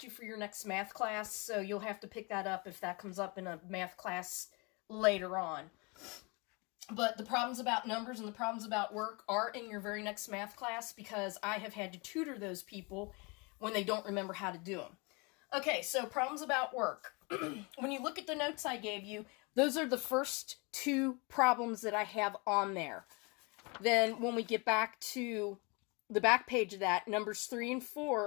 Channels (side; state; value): right; quieter; 29.2 dB